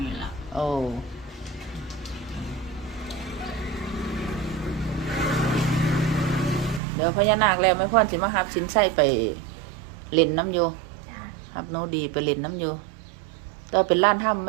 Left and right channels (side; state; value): left; drops out; at 6.8 s